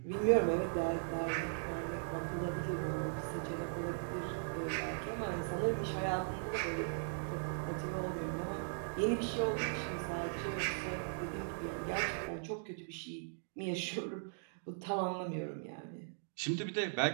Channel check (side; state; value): left; silent; digital silence